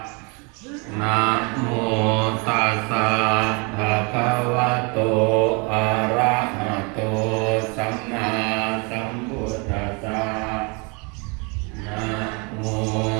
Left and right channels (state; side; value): quieter; left; 31.8 dB